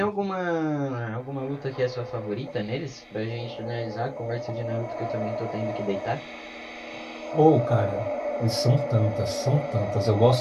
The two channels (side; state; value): both; identical; correlation 1.00